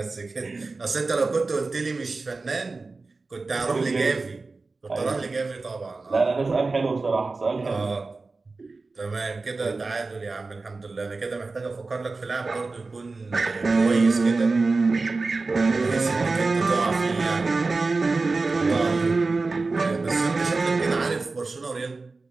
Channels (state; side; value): quieter; left; 3.8 dB